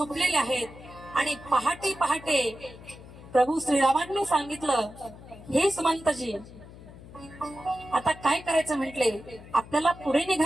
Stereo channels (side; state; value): left; noise; hum, 18 dB below the sound